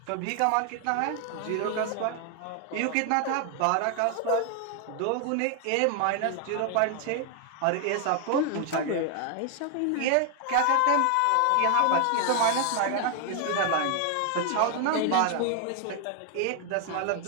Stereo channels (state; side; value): different; both; correlation 0.00